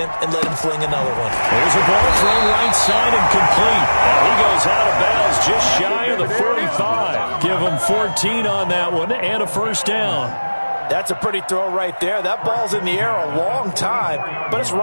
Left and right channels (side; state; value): both; inverted; correlation -1.00